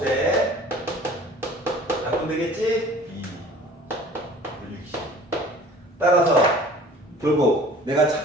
약분 되겠지? 2, 60. 따라서 결국 내가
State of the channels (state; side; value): normal; both; correlation 0.47